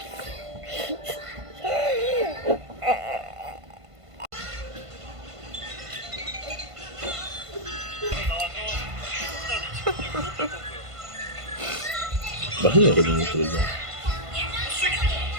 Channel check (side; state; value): left; late; 1.5 ms